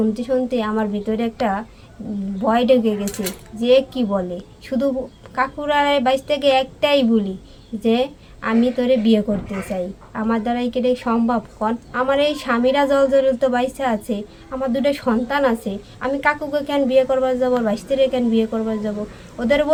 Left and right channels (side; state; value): both; identical; correlation 1.00